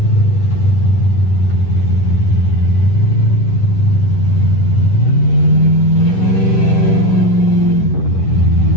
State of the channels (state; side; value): late; right; 10 ms